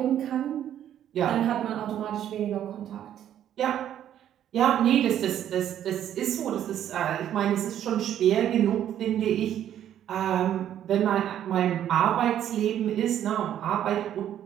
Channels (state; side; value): quieter; left; 10.7 dB